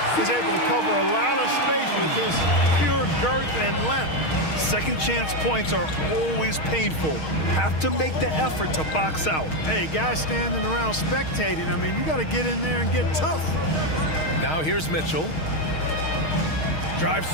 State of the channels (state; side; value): late; right; 6.4 ms